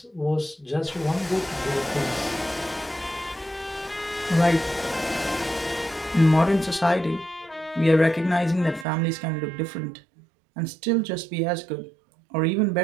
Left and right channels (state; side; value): drops out; left; at 8.8 s